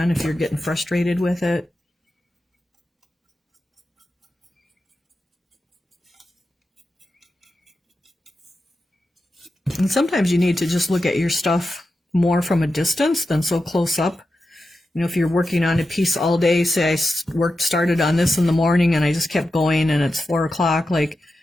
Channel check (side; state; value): both; normal; correlation 0.90